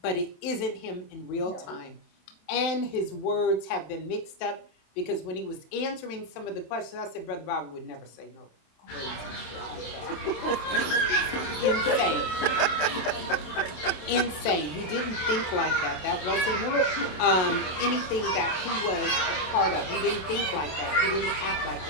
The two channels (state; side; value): late; right; 27 ms